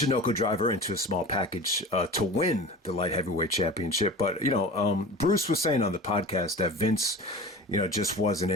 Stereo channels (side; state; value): both; normal; correlation 0.35